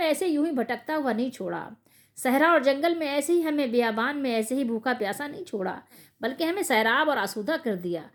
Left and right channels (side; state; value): both; identical; correlation 1.00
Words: ایسے یوں ہی بھٹکتا ہوا نہیں چھوڑا، صحرا اور جنگل میں ایسے ہی ہمیں بیابان میں ایسے ہی بھوکا پیاسا نہیں چھوڑا، بلکہ ہمیں سیراب اور آسودہ کر دیا.